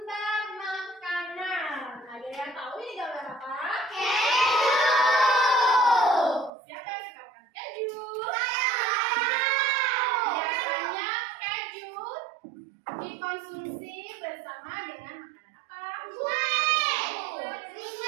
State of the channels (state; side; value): drops out; left; at 6.5 s